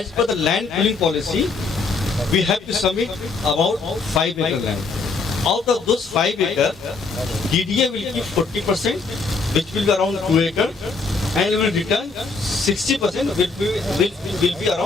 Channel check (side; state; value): right; quieter; 4.2 dB